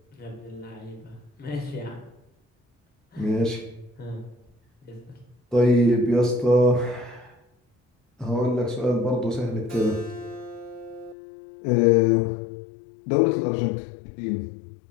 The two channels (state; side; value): drops out; right; at 11.2 s